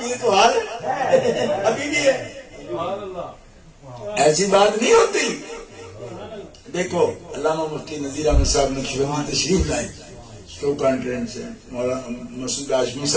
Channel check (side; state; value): both; identical; correlation 1.00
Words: یہ تو حال ہے، ابھی بھی ہے، ایسی بات نہیں ہوتی۔ دیکھو علامہ مفتی نذیر احمد صاحب نقشبندی تشریف لائے، شو کانفرنس ہے، مولانا مسعود ہاشمی